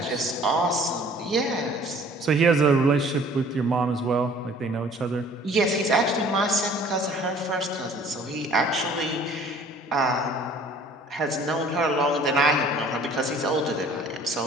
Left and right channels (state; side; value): normal; both; correlation 0.52